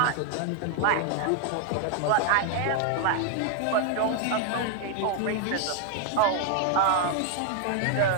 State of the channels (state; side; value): different; both; correlation 0.00